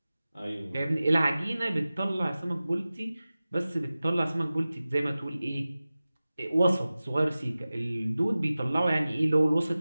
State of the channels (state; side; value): inverted; both; correlation -0.96